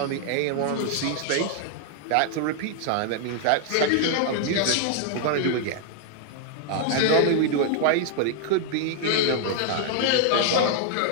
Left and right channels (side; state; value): both; different; correlation -0.01